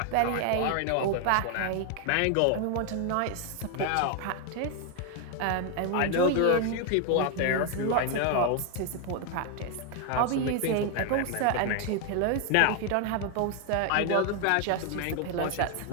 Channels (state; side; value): different; both; correlation 0.01